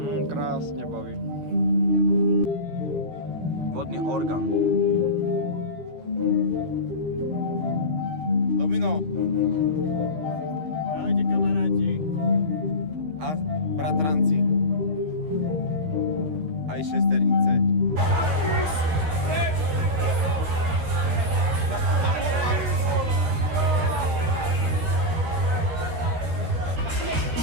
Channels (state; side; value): late; left; 13 ms